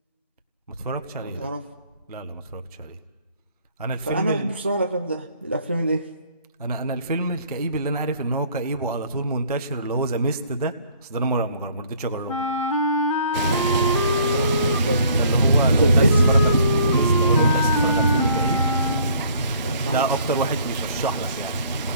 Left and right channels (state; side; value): inverted; both; correlation -0.58